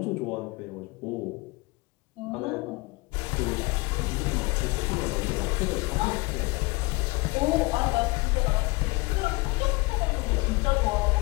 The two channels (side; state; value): right; quieter; 24.9 dB